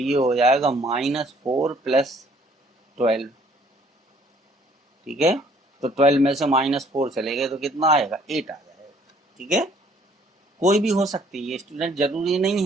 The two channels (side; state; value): both; normal; correlation 0.60